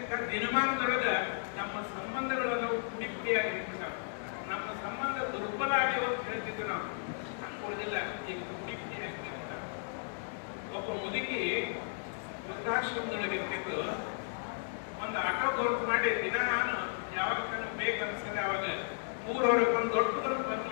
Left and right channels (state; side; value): silent; right; digital silence